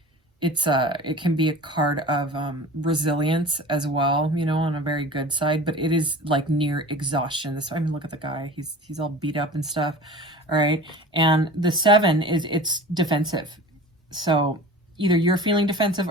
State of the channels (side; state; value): both; normal; correlation 0.38